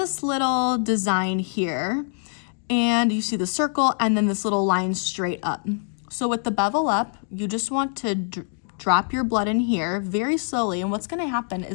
little design here, and you see the circle and then this little line straight up. So with the bevel up, you just want to drop your blood in here very slowly, and what's gonna happen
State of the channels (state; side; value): silent; right; 62 dB below the other